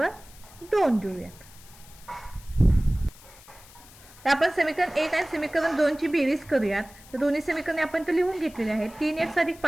2 देऊयात. तर आपण समीकरण 1 आणि समीकरण 2 ची बेरीज करूयात. तर दोन्ही समीकरणे आपण तर लिहून घेतलेली आहेत. 3x अधिक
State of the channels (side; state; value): left; noise; hiss, 22 dB below the sound